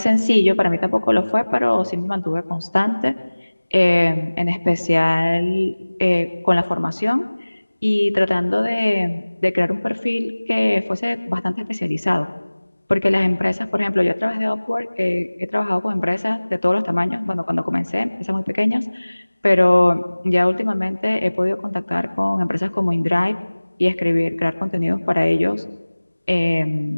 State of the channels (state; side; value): inverted; both; correlation -1.00